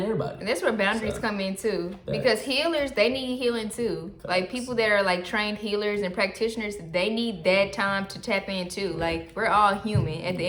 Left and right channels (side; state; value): both; identical; correlation 1.00